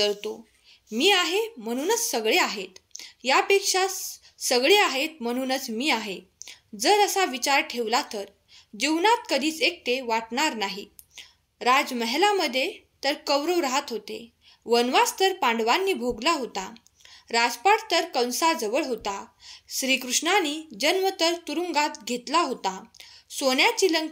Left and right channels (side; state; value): both; identical; correlation 1.00